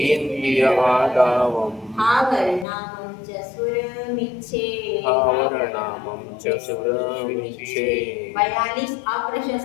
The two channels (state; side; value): drops out; right; at 2.7 s